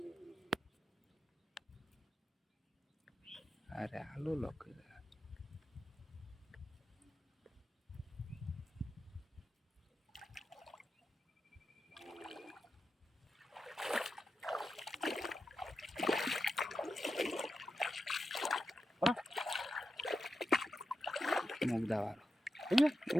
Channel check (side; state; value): both; normal; correlation 0.89